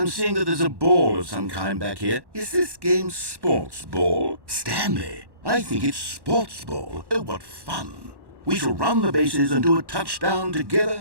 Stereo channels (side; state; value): left; late; 1.1 ms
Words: seeing that there's a ball of some kind back here. Is this game sports ball? Stanley, I think it's sports ball. Oh, what fun. We shall run the bases and do a touchdown